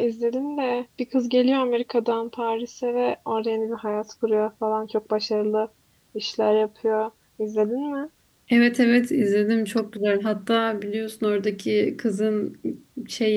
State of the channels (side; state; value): both; identical; correlation 1.00